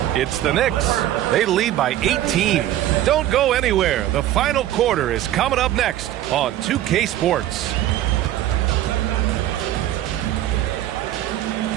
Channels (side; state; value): left; quieter; 13.2 dB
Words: It's the Knicks. They lead by 18. Don't go anywhere. The final quarter is coming up next on 2K Sports.